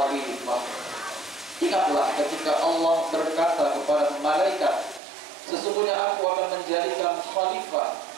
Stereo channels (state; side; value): drops out; left; at 5.0 s